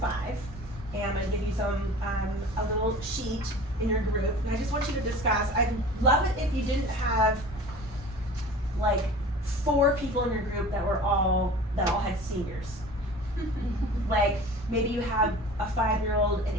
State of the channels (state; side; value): normal; both; correlation 0.40